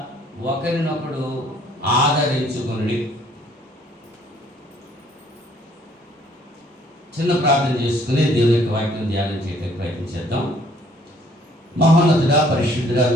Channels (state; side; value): normal; both; correlation 0.61